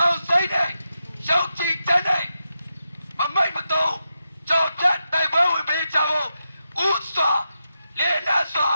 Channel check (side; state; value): both; inverted; correlation -0.87